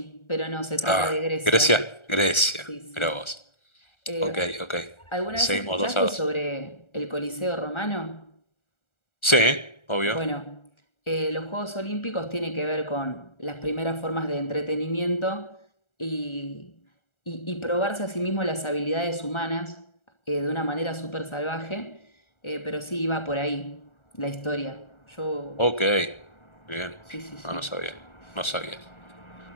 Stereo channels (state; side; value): late; right; 1.4 ms